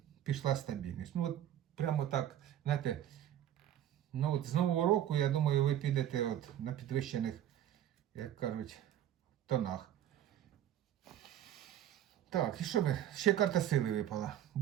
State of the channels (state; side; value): quieter; left; 11.3 dB